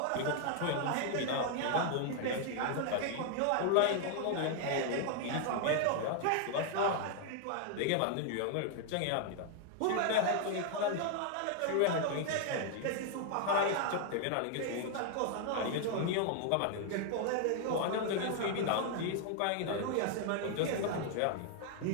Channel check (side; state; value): both; different; correlation 0.00